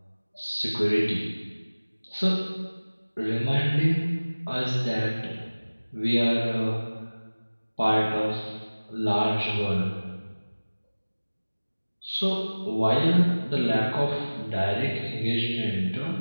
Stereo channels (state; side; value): inverted; both; correlation -1.00